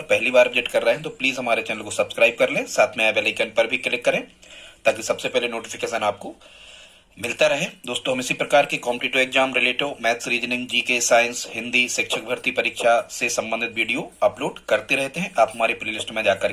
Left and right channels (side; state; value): both; identical; correlation 1.00